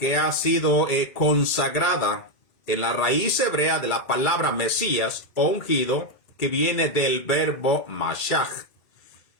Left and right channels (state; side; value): late; right; 2.1 ms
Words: ha sido consagrada, en la raíz hebrea de la palabra Mesías o ungido, que viene del verbo Mashach.